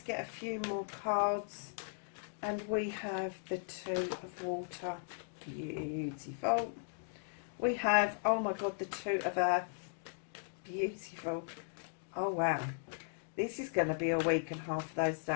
get a few more cards. And we have the Two of Water. Beautiful. We have, oh my God, the Two of Earth. Beautiful. Oh, wow. This is going to be a week and a half for those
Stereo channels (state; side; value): silent; right; digital silence